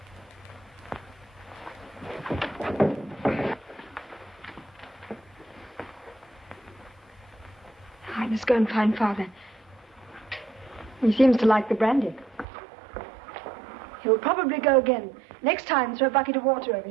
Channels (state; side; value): drops out; left; at 12.5 s